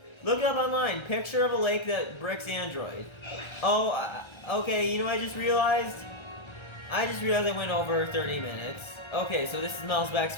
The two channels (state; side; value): late; right; 1.3 ms